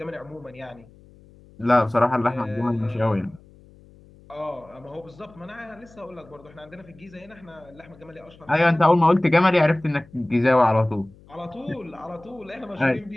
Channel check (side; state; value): left; noise; hum, 25 dB below the sound